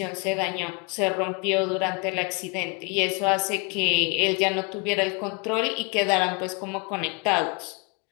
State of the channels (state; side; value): quieter; right; 32.0 dB